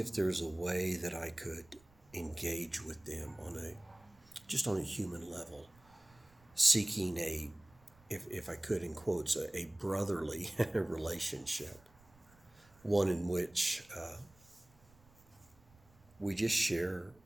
there's a way that I could engage with them on a human level, seeking if I could, in quotes, a brotherly relationship, one in which we just share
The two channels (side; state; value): right; noise; rumble, 28 dB below the sound